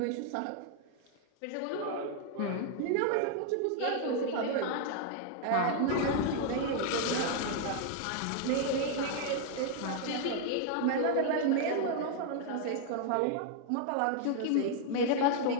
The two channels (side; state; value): both; different; correlation 0.00